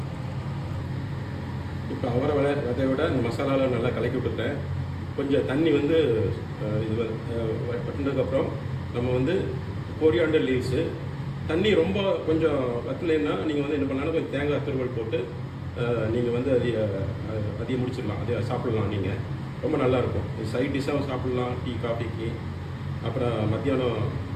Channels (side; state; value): both; identical; correlation 1.00